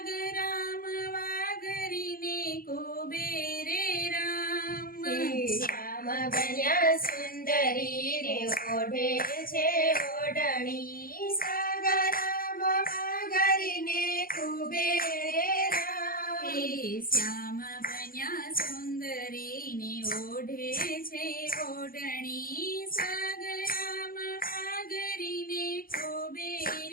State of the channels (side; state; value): right; late; 0.42 ms